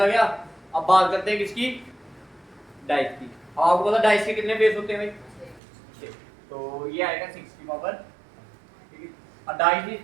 गया। अब बात करते हैं किसकी, डाइस की। आपको पता डाइस के कितने फेस होते हैं भाई 6, तो ये आएगा 6 की पावर, ठीक है। डाइस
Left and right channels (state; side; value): drops out; left; at 5.6 s